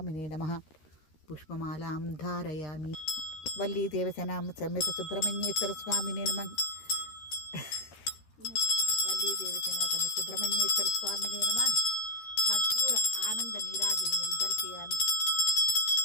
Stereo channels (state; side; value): late; right; 13 ms